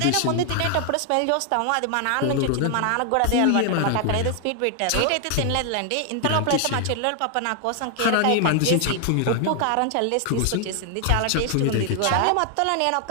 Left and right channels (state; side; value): different; both; correlation 0.00